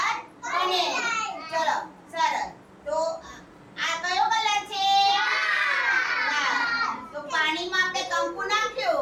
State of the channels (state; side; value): identical; both; correlation 1.00